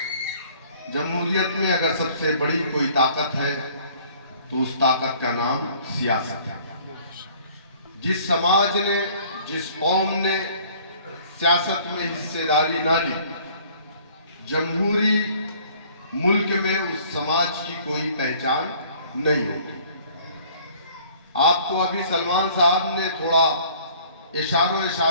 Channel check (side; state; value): both; inverted; correlation -0.55